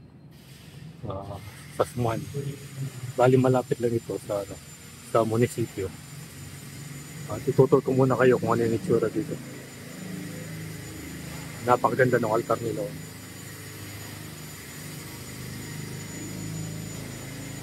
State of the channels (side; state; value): both; identical; correlation 1.00